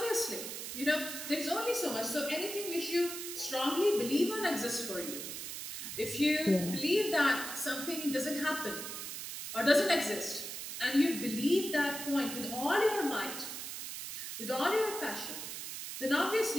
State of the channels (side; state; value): right; noise; hiss, 7 dB below the sound